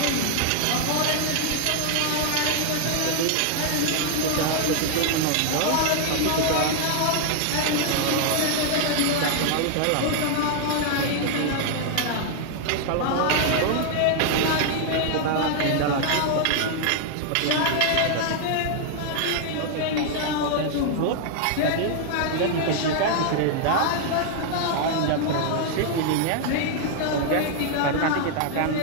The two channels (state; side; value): different; both; correlation 0.00